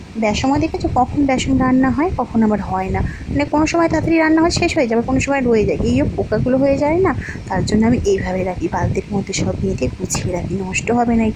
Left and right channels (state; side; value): identical; both; correlation 1.00